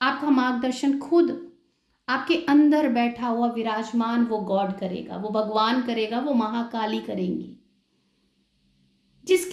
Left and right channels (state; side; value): identical; both; correlation 1.00